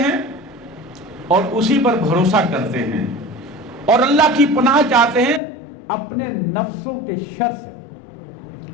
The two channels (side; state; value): right; drops out; at 5.4 s